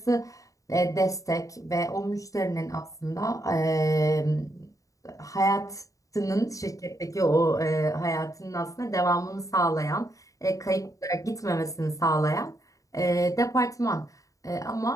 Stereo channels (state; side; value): late; right; 0.16 ms